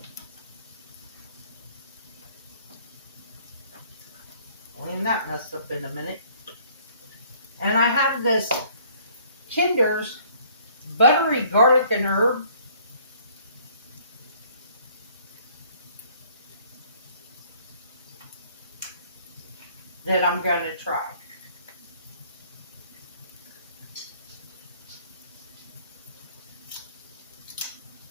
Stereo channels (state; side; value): inverted; both; correlation -0.59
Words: Clean that mess up in a minute. And I have this Kinder's buttery garlic and herb. That I'm going to try.